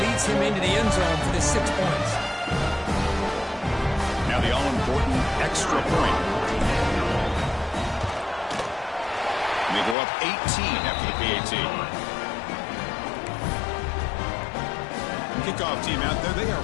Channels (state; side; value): drops out; right; at 10.0 s